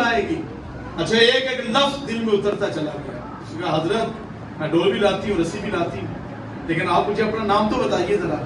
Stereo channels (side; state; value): both; identical; correlation 1.00